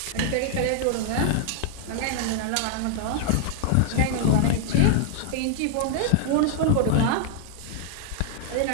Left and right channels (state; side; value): different; both; correlation -0.01